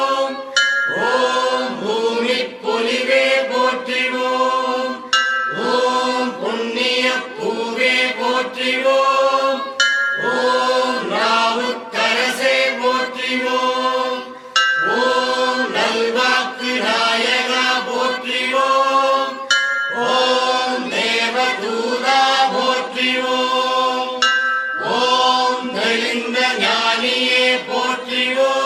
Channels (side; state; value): both; identical; correlation 1.00